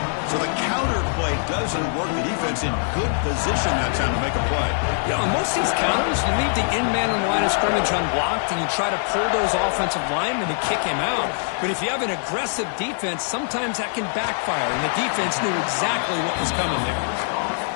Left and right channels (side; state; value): right; silent; digital silence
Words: So the counter play doesn't work. The defense in good position that time to make a play. Yeah, on most of these counters, you leave the in-man on the line of scrimmage unblocked, and you try to pull those offensive linemen to kick him out. But if you have an aggressive defense, sometimes that can backfire, and the defense knew exactly what was coming there.